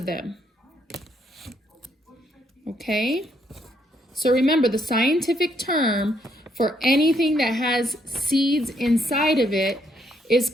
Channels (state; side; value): normal; both; correlation 0.73